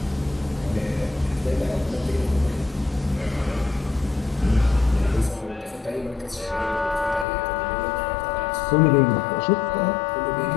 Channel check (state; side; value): drops out; right; at 7.2 s